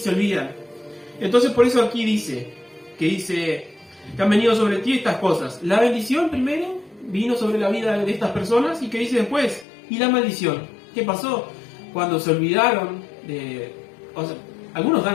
olvidan. Entonces por eso aquí dice que han venido sobre ti estas cosas. La bendición primero vino sobre la vida de estas personas, y que dice después, y la maldición. ¿Qué pasó? Cuando se olvidaron o sea, algunos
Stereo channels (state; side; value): drops out; right; at 9.7 s